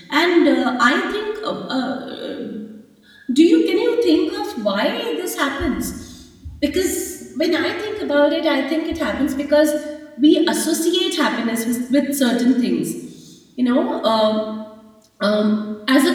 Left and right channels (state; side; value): identical; both; correlation 1.00